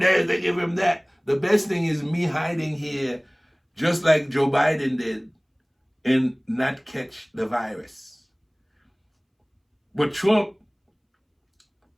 they give him that. The best thing is me hiding here, just like Joe Biden did, and not catch the virus. But Trump,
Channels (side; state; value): both; identical; correlation 1.00